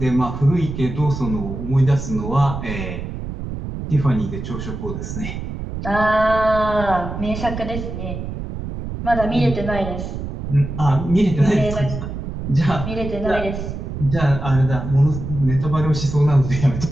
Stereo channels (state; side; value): noise; right; rumble, 6 dB below the sound